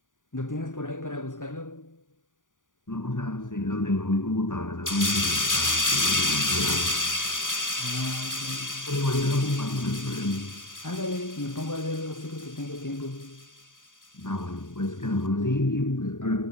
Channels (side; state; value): right; late; 0.88 ms